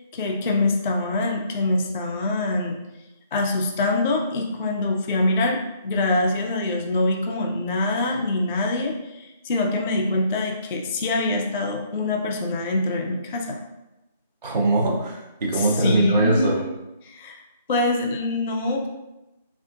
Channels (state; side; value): inverted; both; correlation -0.63